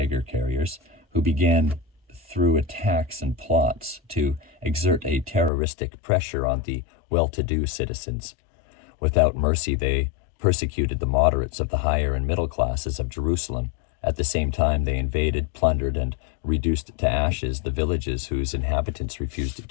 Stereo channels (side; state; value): right; drops out; at 5.5 s